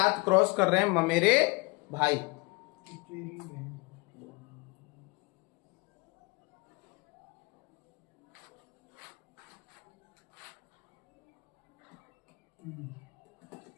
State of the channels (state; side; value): quieter; right; 26.6 dB